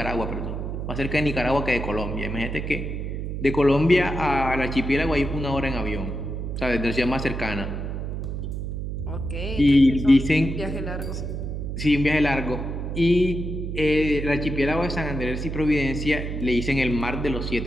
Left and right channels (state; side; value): noise; right; hum, 4 dB below the sound